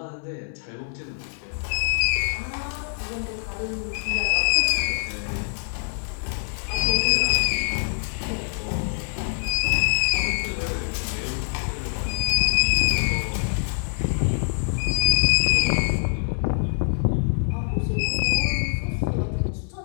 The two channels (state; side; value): silent; right; 62 dB below the other